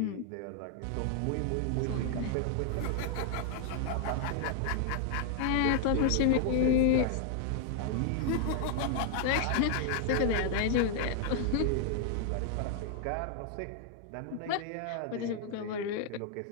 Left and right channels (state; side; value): different; both; correlation 0.00